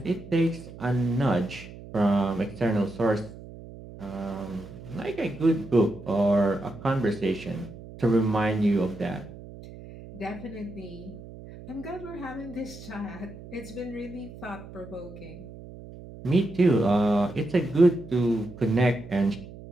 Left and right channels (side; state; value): right; noise; hum, 15 dB below the sound